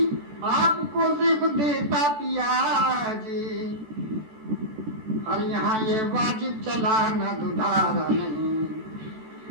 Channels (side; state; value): left; late; 14 ms